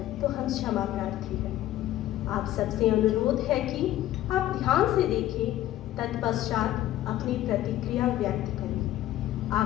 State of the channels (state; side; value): quieter; right; 13.9 dB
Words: तो हम क्षमा प्रार्थी हैं। आप सबसे अनुरोध है कि आप ध्यान से देखें, तत्पश्चात अपनी प्रतिक्रिया व्यक्त करें।